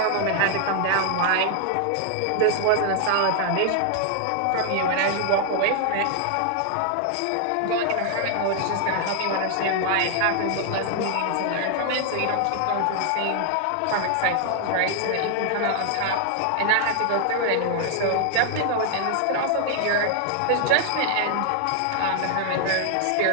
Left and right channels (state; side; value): different; both; correlation 0.00